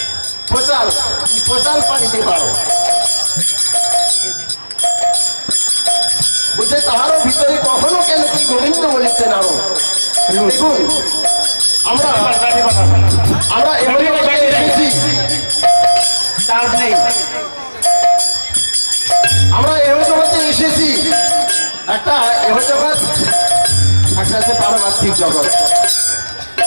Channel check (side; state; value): both; inverted; correlation -1.00